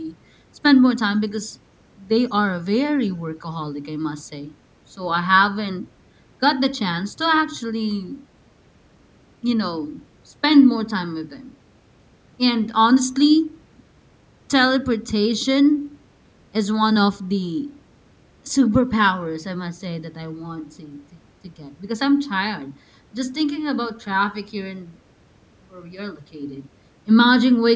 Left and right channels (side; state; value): both; identical; correlation 1.00